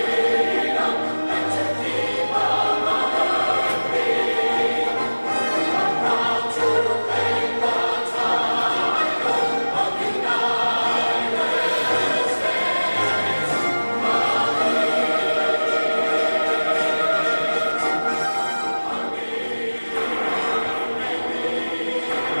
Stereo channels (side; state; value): both; inverted; correlation -1.00